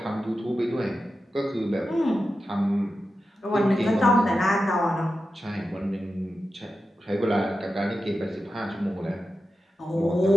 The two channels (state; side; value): normal; both; correlation 0.91